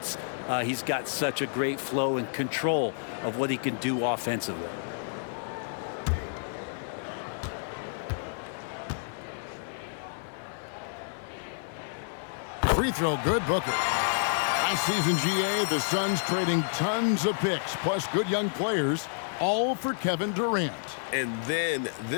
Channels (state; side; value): silent; right; digital silence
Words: He's got such a great flow and control of what he can do offensively. Free throw good, Booker. Last season, GA, the Suns trading tons of picks, plus good young players, all for Kevin Durant. And then